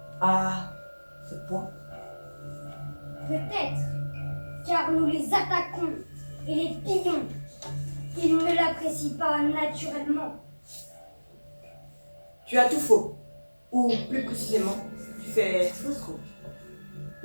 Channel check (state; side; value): inverted; both; correlation -1.00